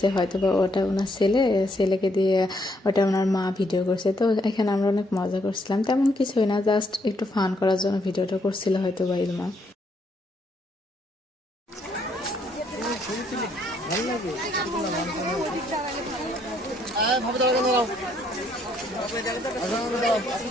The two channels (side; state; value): both; normal; correlation 0.71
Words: হয়তো বা ওটা ওনার ছেলেকে দিয়ে ওটা ওনার মা ভিডিও করছে। তো এখানে আমরা অনেক মজা করছিলাম, তেমন কিছুই না, জাস্ট একটু ফান করার জন্য ভিডিওটা করছিল হয়তো বা ইলমা।